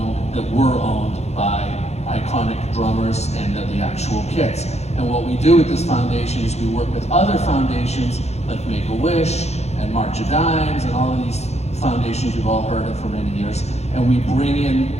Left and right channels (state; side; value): late; right; 0.31 ms